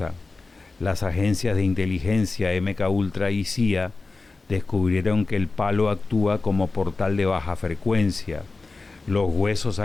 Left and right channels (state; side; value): quieter; right; 3.7 dB